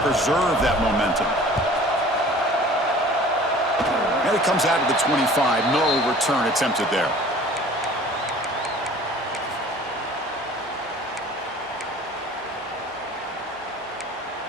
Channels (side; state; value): both; normal; correlation 0.47